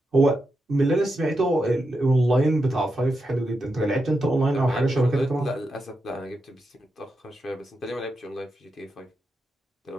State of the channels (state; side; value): normal; both; correlation 0.87